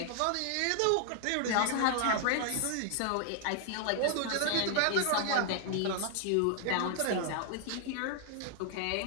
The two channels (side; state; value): both; different; correlation 0.00